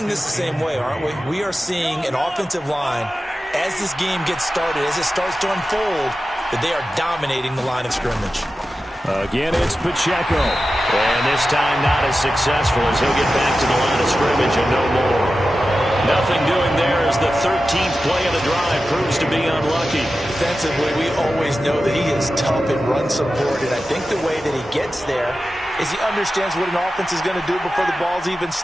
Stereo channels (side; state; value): both; normal; correlation 0.93